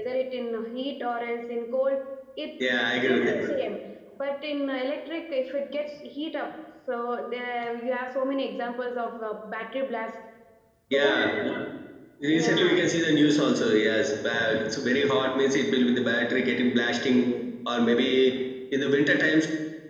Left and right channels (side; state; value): both; identical; correlation 1.00